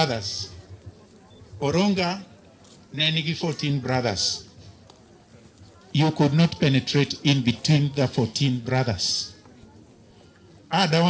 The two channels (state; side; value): identical; both; correlation 1.00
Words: Oronga nenigi 14 brothers. You could not penetrate in between the 14 brothers.